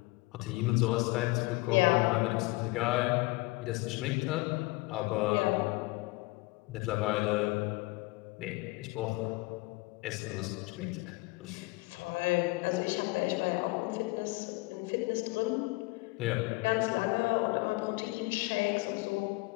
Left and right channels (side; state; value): right; quieter; 23.3 dB